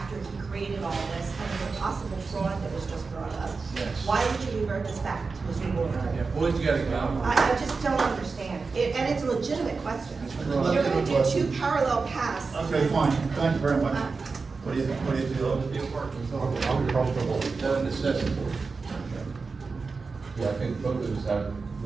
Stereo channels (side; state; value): left; quieter; 4.4 dB